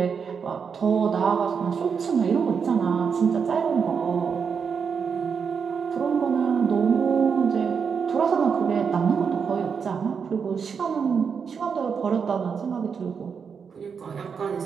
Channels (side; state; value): left; quieter; 6.2 dB